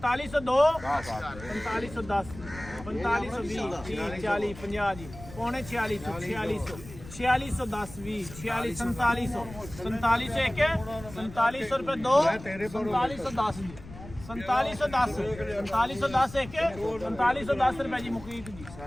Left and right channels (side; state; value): left; noise; rumble, 15 dB below the sound